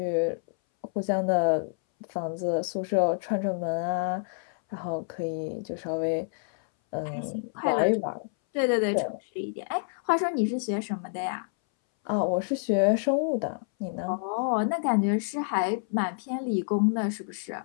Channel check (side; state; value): right; silent; 59 dB below the other